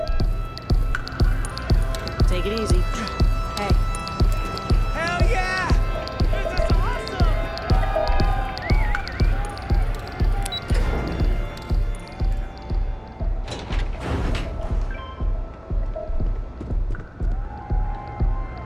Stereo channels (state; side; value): identical; both; correlation 1.00